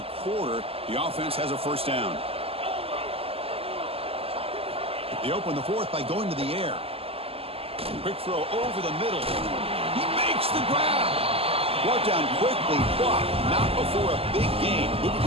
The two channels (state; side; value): late; left; 0.28 ms